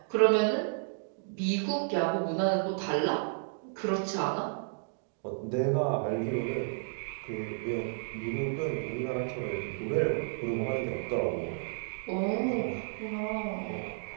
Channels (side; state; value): left; silent; digital silence